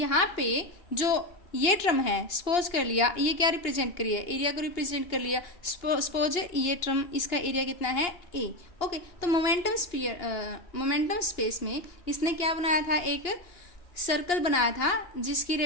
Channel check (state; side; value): late; right; 2.8 ms